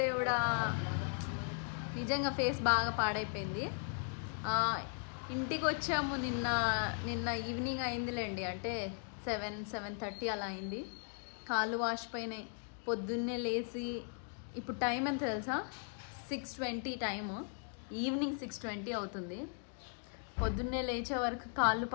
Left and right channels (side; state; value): right; silent; 53 dB below the other